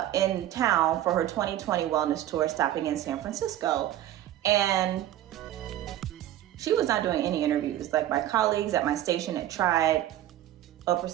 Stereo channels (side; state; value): left; quieter; 12.9 dB